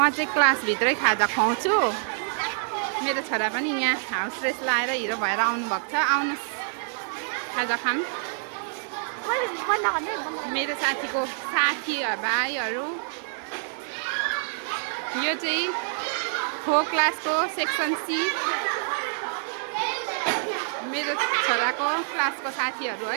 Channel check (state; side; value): silent; left; digital silence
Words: चाहिँ क्लासभित्रै खाजा खुवाउँछु। मेरो छोरा पनि यहाँ हाउस ड्रेस लाएर हिरो भएर आउनुभएको छ। आउनुहोस् खाजा खाऊँ। मेरो साथीको साथी भाइहरू, यो चाहिँ 4 क्लासको सेक्सन सी मेरो छोराको क्लासको साथीहरू